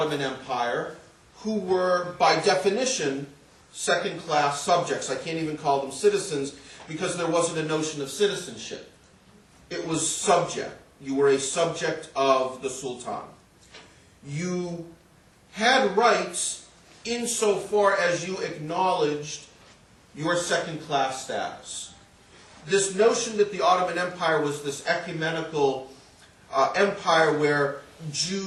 Empire, who were, by definition, second-class subjects. I can't even call them citizens because there wasn't a notion of citizenship. It was subject. You were a subject of the Sultan. You had rights insofar as you acknowledged your second-class status. This notion that the Ottoman Empire was this ecumenical empire where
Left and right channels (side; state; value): both; identical; correlation 1.00